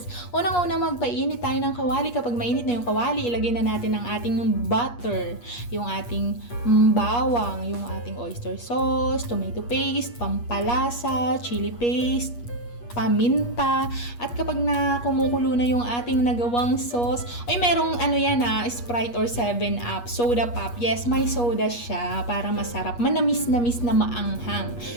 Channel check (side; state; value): right; late; 8.4 ms